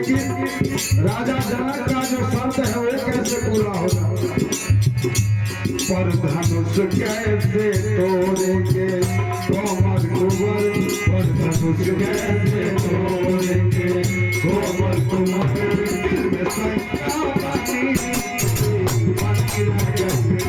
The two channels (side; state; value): both; identical; correlation 1.00